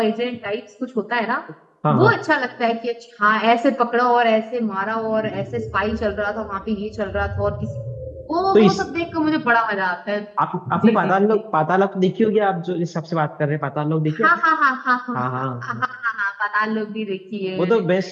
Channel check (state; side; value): identical; both; correlation 1.00